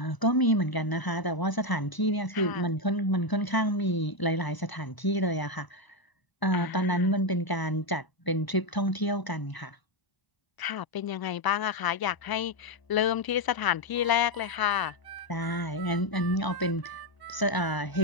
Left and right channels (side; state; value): right; late; 1.0 ms